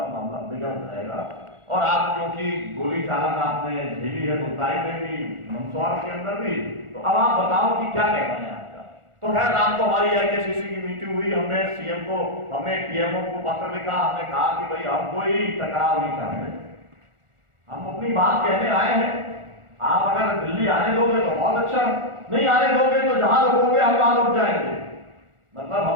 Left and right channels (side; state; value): left; late; 1.4 ms